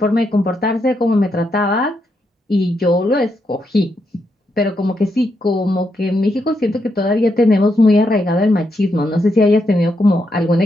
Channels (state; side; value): normal; both; correlation 0.81